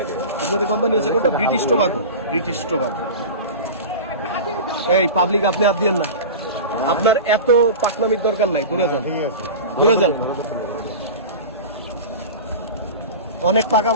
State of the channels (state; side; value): inverted; both; correlation -0.30